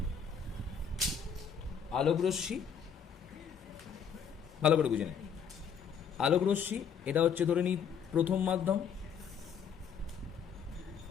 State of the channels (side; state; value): right; quieter; 7.1 dB